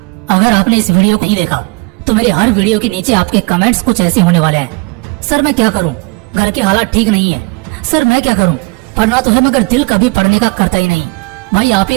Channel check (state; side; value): quieter; left; 27.2 dB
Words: अगर आपने इस वीडियो को नहीं देखा तो मेरे हर वीडियो के नीचे आपके कमेंट्स कुछ ऐसे होने वाले हैं। सर मैं क्या करूं, घर के हालात ठीक नहीं है। सर मैं क्या करूं, पढ़ना तो है मगर दिल कभी पढ़ने का करता ही नहीं। भाई आप ही